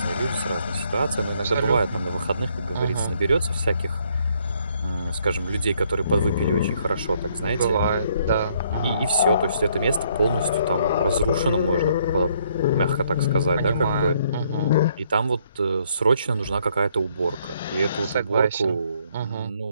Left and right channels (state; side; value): inverted; both; correlation -0.69